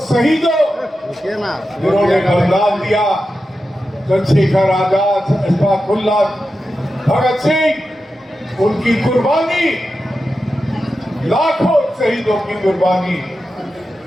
शहीदों जिन्होंने बलिदान दिया, चंद्रशेखर आजाद, अशफाकुल्लाह, भगत सिंह, उनकी कुर्बानी, लाखों शहीदों की कुर्बानी,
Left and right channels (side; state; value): both; normal; correlation 0.91